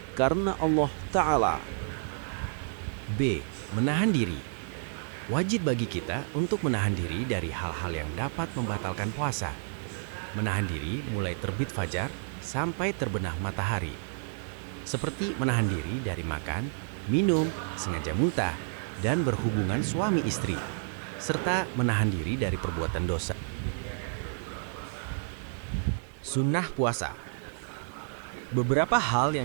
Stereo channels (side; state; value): left; silent; digital silence